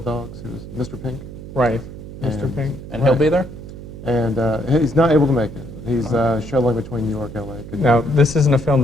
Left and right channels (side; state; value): right; noise; hum, 12 dB below the sound